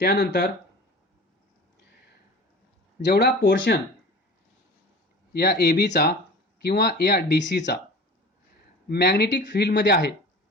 त्यानंतर जेवढा पोर्शन या एबीचा किंवा या डीसीचा मॅग्नेटिक फील्डमध्ये आहे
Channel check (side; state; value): both; normal; correlation 0.38